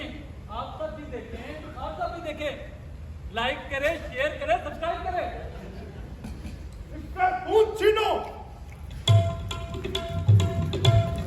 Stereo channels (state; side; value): identical; both; correlation 1.00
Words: आप सब भी देखें, आप सब भी देखें। लाइक करें, शेयर करें, सब्सक्राइब करें। इससे खून छीनो।